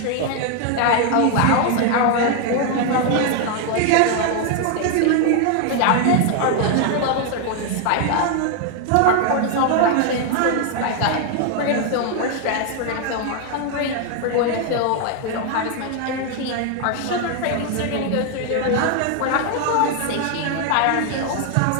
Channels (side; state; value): both; different; correlation 0.00